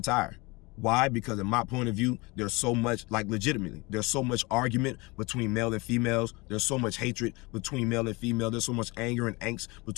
Why? Because in my point of view, there's so much, like, legitimately, there's so much argument between male and females. There's so much hatred between male and female. There's so much anger and angst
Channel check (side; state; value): right; quieter; 25.2 dB